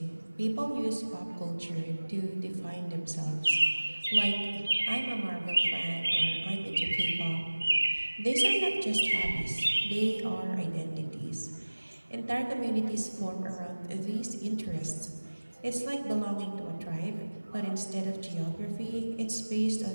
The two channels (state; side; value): inverted; both; correlation -1.00